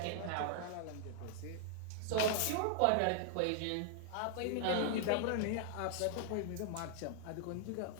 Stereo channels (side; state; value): both; different; correlation -0.01